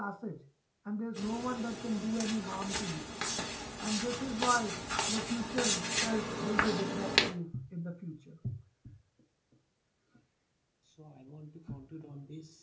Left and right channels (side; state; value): both; identical; correlation 1.00